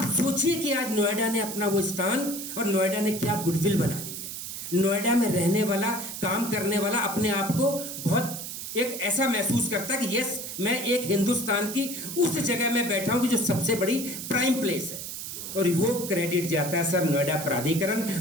सोचिए कि आज नोएडा ने अपना वो स्थान और नोएडा ने क्या गुडविल बना ली है। नोएडा में रहने वाला, काम करने वाला अपने आप को बहुत एक ऐसा महसूस करता है कि यस, मैं एक हिंदुस्तान की उस जगह में बैठा हूं कि जो सबसे बड़ी प्राइम प्लेस है। और वो क्रेडिट जाता है सर नोएडा प्राधिकरण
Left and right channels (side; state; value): right; noise; hiss, 7 dB below the sound